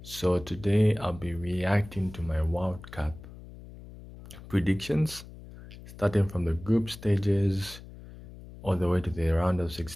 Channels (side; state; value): left; noise; hum, 16 dB below the sound